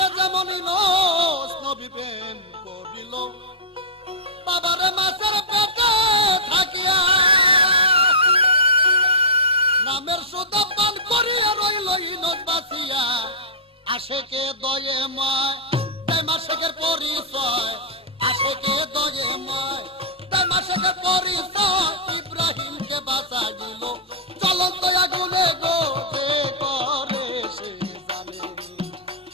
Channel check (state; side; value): normal; both; correlation -0.10